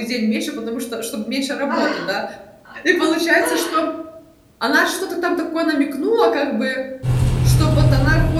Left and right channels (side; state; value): both; identical; correlation 1.00